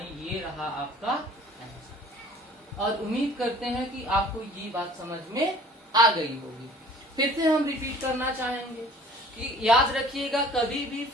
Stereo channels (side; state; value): both; normal; correlation 0.50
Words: ये रहा आपका आंसर। और उम्मीद करते हैं कि आपको ये बात समझ में आ गई होगी। फिर से हम रिपीट करना चाहेंगे कि याद रखिएगा कभी भी